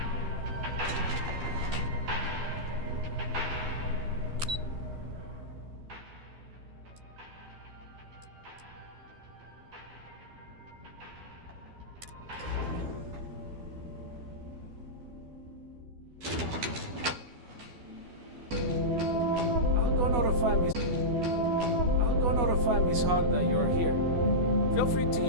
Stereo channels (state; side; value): late; left; 12 ms